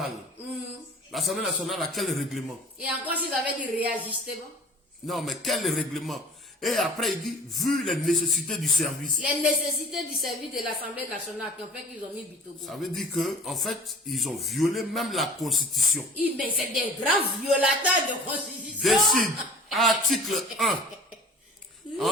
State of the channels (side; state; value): both; normal; correlation 0.45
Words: L'Assemblée nationale a quel règlement? Et encore, s'ils avaient dit réajustement. Non, mais quel règlement? Et après, il dit, vu les nécessités du service. Les nécessités du service de l'Assemblée nationale qui ont fait qu'ils ont mis Bitogo. Ça veut dire que, en fait, ils ont violé même la Constitution. Mais c'est des grands violateurs de constitution. Décide, article 1, en